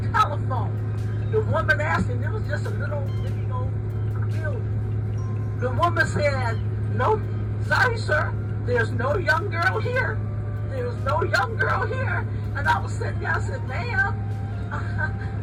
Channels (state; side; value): identical; both; correlation 1.00